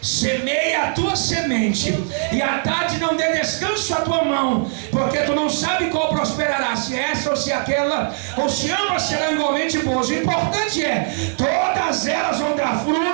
semeia a tua semente, e à tarde não dê descanso à tua mão, porque tu não sabe qual prosperará, se essa ou se aquela, ou se ambas serão igualmente boas. O importante é, todas elas vão dar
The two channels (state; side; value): silent; left; digital silence